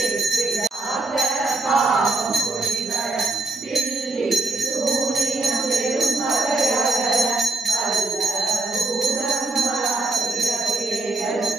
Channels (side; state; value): left; quieter; 3.3 dB